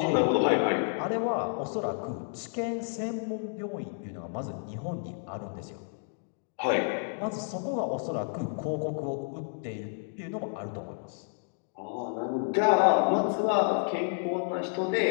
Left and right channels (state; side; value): silent; right; 58 dB below the other